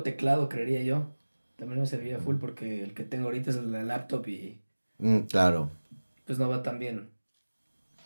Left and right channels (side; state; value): both; inverted; correlation -1.00